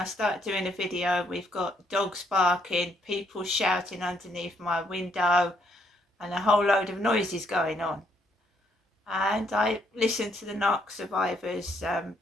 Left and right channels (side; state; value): both; normal; correlation 0.71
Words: start doing a video, we've got dogs barking, people shouting underneath my window, and a whole load of noises going on. And I listened to the Narc Survivors